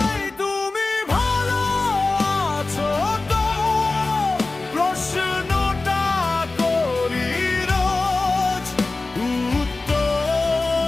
তুমি ভালো আছো তো প্রশ্নটা করি রোজ,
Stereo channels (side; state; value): right; quieter; 3.4 dB